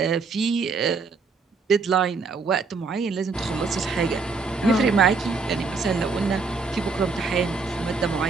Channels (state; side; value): quieter; left; 4.5 dB